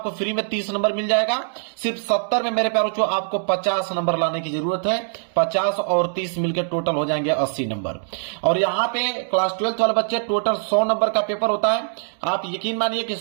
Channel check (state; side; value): silent; left; digital silence